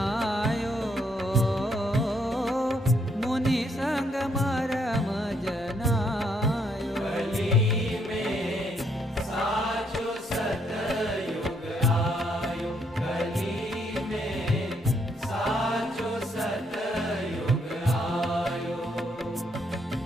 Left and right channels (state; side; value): normal; both; correlation 0.73